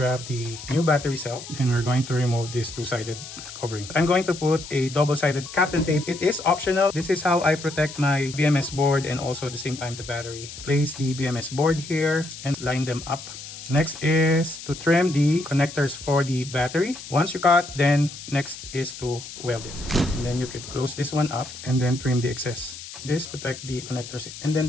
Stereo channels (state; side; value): noise; left; hiss, 12 dB below the sound